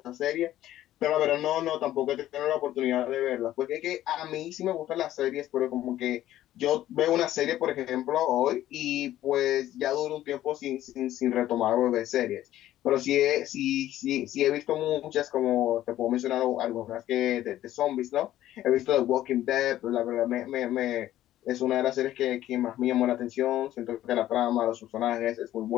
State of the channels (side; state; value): right; quieter; 13.5 dB